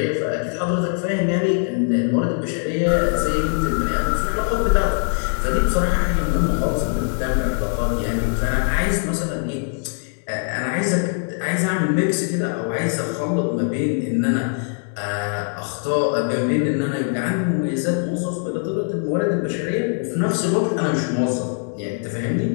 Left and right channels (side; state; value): right; silent; 57 dB below the other